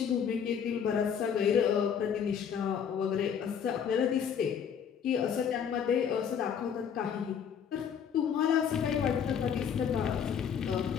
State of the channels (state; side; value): quieter; right; 7.7 dB